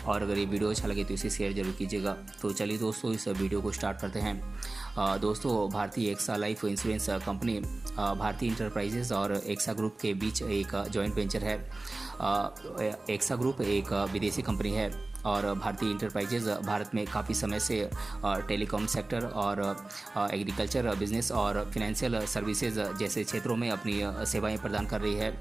और अगर ये वीडियो अच्छा लगे तो इसे शेयर जरूर कीजिएगा। तो चलिए दोस्तों, इस वीडियो को स्टार्ट करते हैं। दोस्तों, Bharti AXA life insurance company भारतीय इंटरप्राइजेज और एक्सा ग्रुप के बीच एक जॉइंट वेंचर है। एक्सा ग्रुप एक विदेशी कंपनी है और भारतीय इंटरप्राइजेज भारत में काफ़ी समय से टेलीकॉम सेक्टर और एग्रीकल्चर बिजनेस और फिनेंशियल सर्विसेज जैसे क्षेत्रों में अपनी सेवाएं प्रदान कर रही है।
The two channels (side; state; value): left; quieter; 3.0 dB